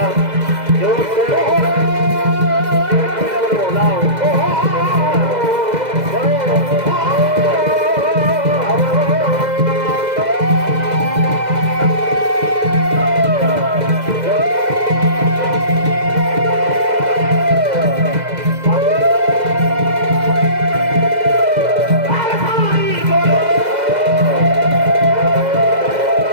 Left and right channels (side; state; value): left; late; 2.0 ms